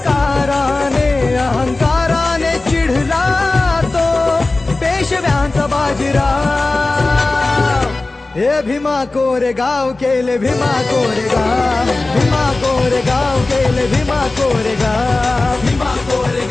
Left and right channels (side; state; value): right; quieter; 3.2 dB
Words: अहंकाराने चिढला तो पेशव्यांचा बाजीराव. हे भीमा कोरेगाव केले भीमा कोरेगाव, भीमा कोरेगाव केले भीमा कोरेगाव, भीमा